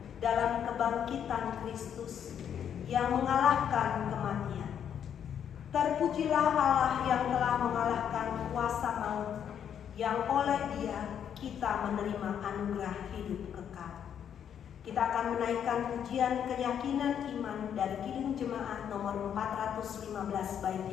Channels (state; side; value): quieter; right; 8.8 dB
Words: dalam kebangkitan Kristus yang mengalahkan kematian. Terpujilah Allah yang telah mengalahkan kuasa maut, yang oleh Dia kita menerima anugerah hidup kekal. Kita akan menaikkan pujian keyakinan iman dari Kidung Jemaat nomor 415 bait